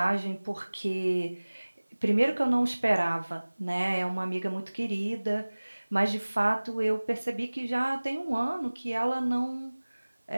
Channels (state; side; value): inverted; both; correlation -1.00